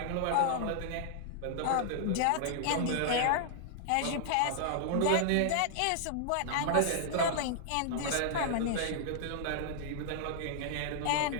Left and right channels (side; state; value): both; different; correlation -0.01